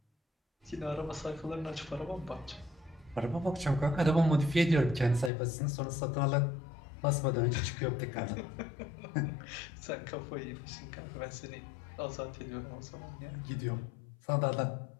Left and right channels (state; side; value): drops out; right; at 5.3 s